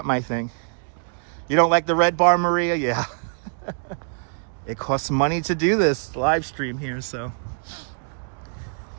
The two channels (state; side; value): silent; left; 62 dB below the other